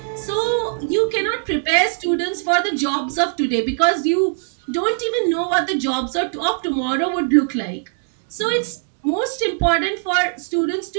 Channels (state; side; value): silent; left; digital silence